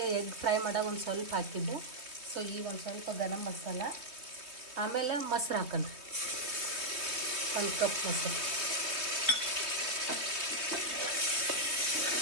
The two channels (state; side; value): late; left; 3.2 ms